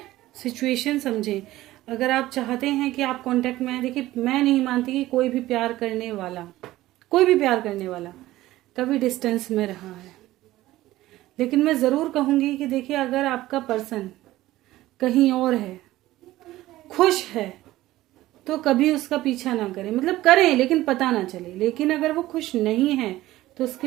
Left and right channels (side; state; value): left; quieter; 16.2 dB